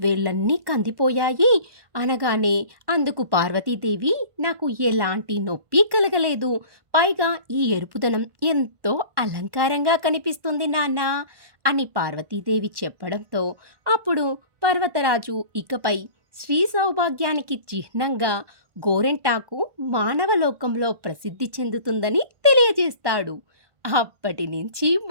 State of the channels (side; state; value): left; late; 1.1 ms